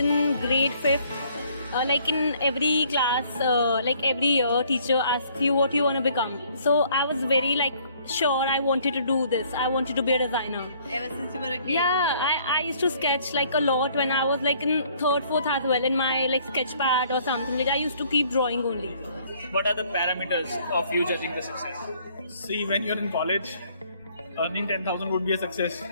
grade 5th. Like in every class, like every year, teacher asks you what you want to become. So I was very sure I wanted to do this. I wanted to be a designer. Ever since you were a kid? Yeah, I used to sketch a lot when I was in 3rd, 4th as well in my sketch pad or something. I used to keep drawing only. What are the parameters of you judging the success? See, when you're in college, earning 10,000 would be a success.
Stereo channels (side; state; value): both; inverted; correlation -0.61